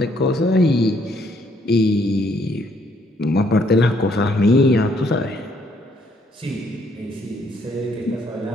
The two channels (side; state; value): both; normal; correlation 0.68